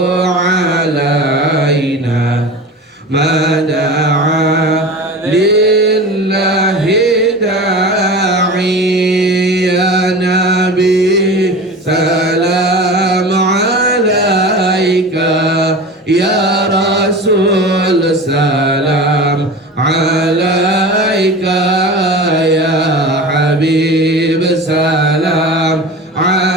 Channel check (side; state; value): both; normal; correlation 0.33